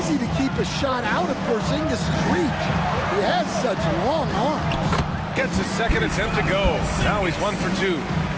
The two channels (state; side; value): identical; both; correlation 1.00